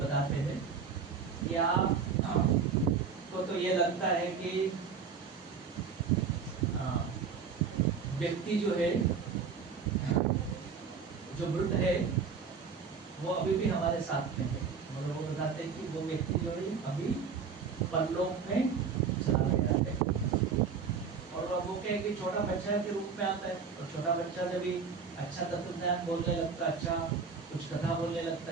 हैं कि आप को तो ये लगता है कि व्यक्ति जो है, जो मृत है, वो अभी भी हमारे साथ में है। और वो बताते हैं कि वो व्यक्ति जो है अभी परलोक में चला गया है। और वो क्या है कि छोटा बच्चा के रूप में आता है, और छोटा बच्चा जब भी अच्छा तत्व ज्ञान बोलने लगता है, अच्छा कुछ कथा बोलने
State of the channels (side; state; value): left; quieter; 5.8 dB